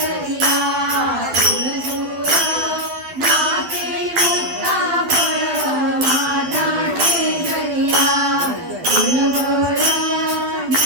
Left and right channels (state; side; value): late; left; 12 ms